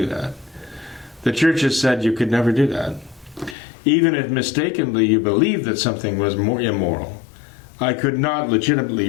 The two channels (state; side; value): drops out; right; at 3.6 s